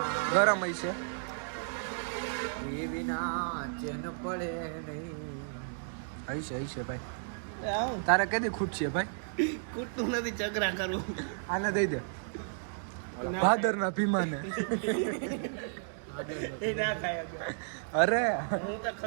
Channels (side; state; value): left; silent; digital silence